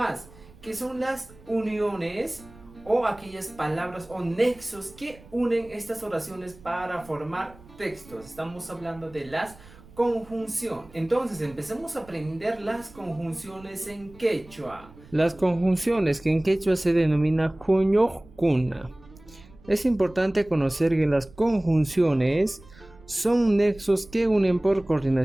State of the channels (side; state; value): right; noise; rumble, 23 dB below the sound